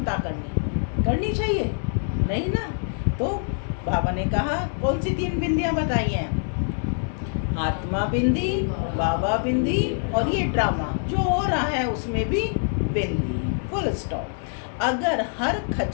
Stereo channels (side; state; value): right; silent; 62 dB below the other